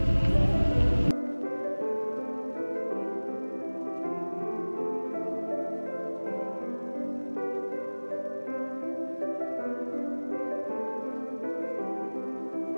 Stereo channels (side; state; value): both; inverted; correlation -1.00